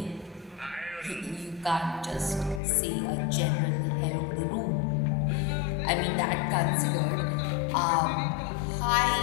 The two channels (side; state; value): right; drops out; at 2.6 s